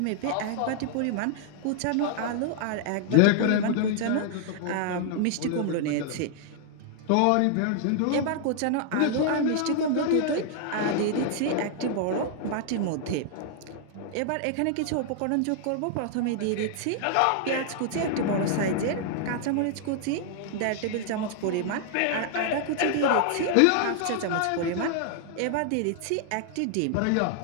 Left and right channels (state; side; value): different; both; correlation -0.01